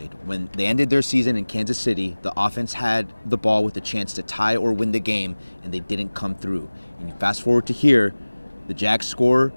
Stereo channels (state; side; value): inverted; both; correlation -1.00